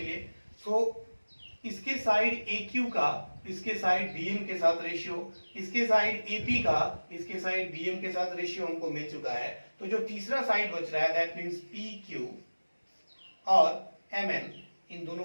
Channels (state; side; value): inverted; both; correlation -1.00